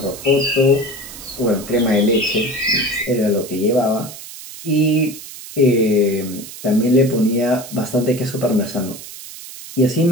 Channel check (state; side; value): noise; right; hiss, 14 dB below the sound